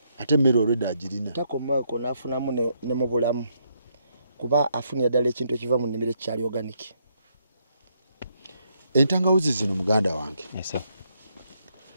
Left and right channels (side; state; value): both; inverted; correlation -0.75